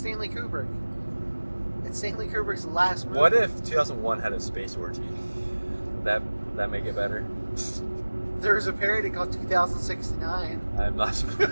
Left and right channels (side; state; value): both; inverted; correlation -1.00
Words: Kubrick. It's Stanley Kubrick's last movie. What if 2001 had a space orgy? Would that make it better? There's a parody called 2069. I'm not